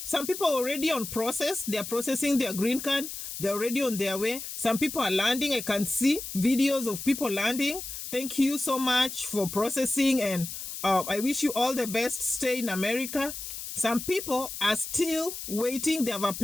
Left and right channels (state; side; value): noise; left; hiss, 8 dB below the sound